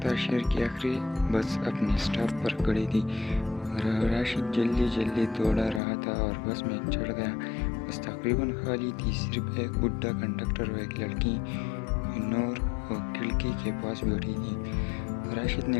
था। शहर की आखिरी बस अपने स्टॉप पर खड़ी थी। राशिद जल्दी जल्दी दौड़ा रहा था और बस में चढ़ गया। बस तकरीबन खाली थी। सिर्फ एक बुढ़ा कंडक्टर और एक लड़की नूर खिड़की के पास बैठी थी। राशिद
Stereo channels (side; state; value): right; drops out; at 5.8 s